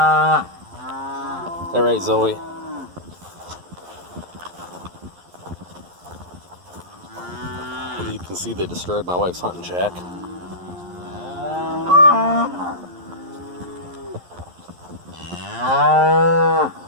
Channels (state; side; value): late; left; 11 ms